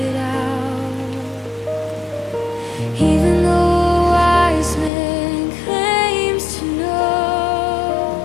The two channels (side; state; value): right; drops out; at 4.9 s